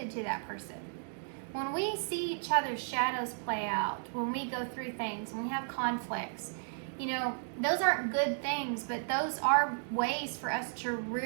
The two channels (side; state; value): left; silent; digital silence